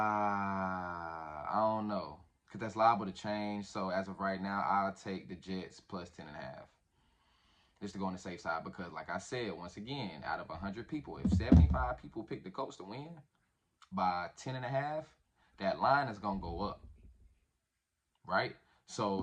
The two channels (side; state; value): both; identical; correlation 1.00